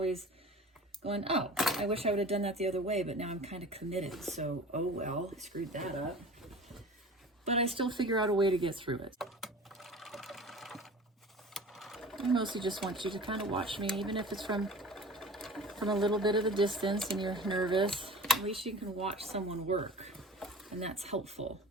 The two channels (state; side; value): normal; both; correlation 0.39